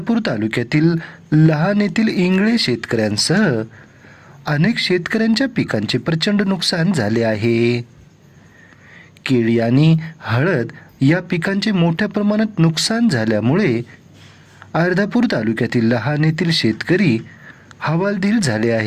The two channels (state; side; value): identical; both; correlation 1.00